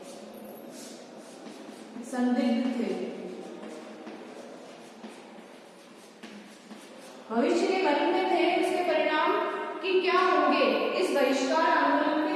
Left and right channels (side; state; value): both; identical; correlation 1.00